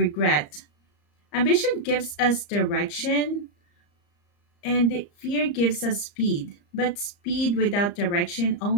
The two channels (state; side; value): late; right; 34 ms